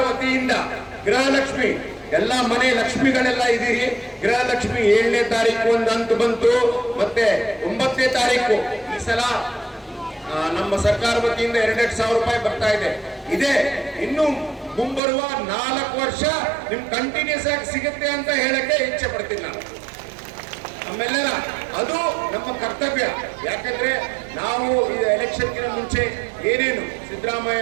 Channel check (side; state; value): left; drops out; at 15.0 s